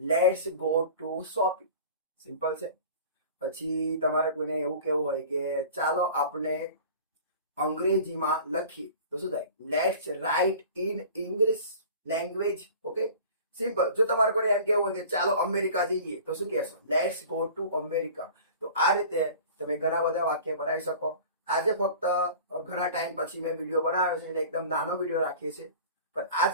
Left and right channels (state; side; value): inverted; both; correlation -0.41